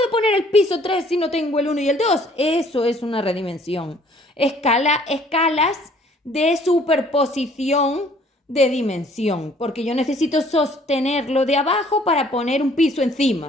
poner el piso 3 si no tengo el 1 y el 2. Eso es una redimensión. Escalas de superposición de dimensión, porque yo necesito sostenerlo de abajo para poner un piso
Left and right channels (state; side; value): normal; both; correlation 0.58